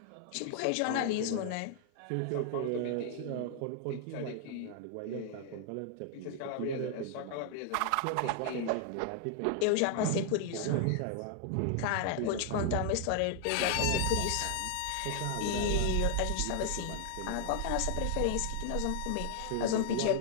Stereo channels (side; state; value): both; different; correlation 0.00